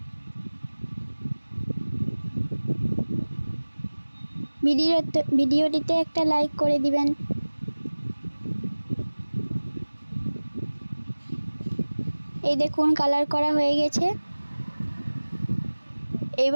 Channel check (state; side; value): inverted; both; correlation -1.00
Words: ভিডিওটিতে একটা লাইক করে দিবেন। এই দেখুন কালার করা হয়ে গেছে।